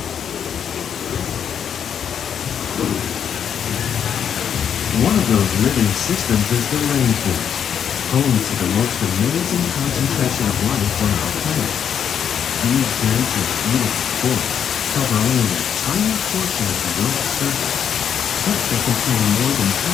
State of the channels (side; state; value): right; quieter; 8.3 dB